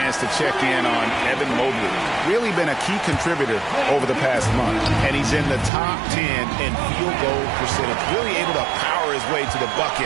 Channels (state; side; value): drops out; left; at 5.7 s